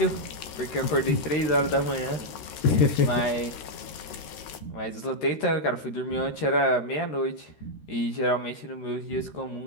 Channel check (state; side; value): late; right; 13 ms